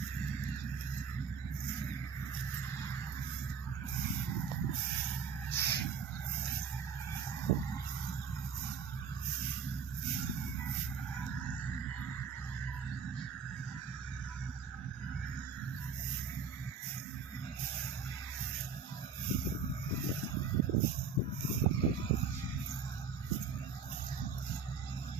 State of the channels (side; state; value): left; quieter; 5.7 dB